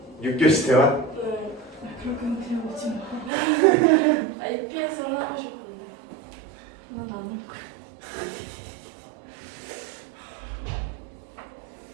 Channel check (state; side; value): drops out; left; at 3.3 s